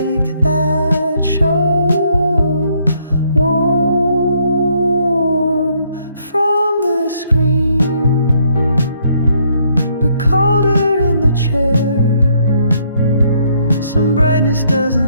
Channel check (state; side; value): inverted; both; correlation -0.70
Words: that show. Warm from the screen, but colder in the chair. Some brightness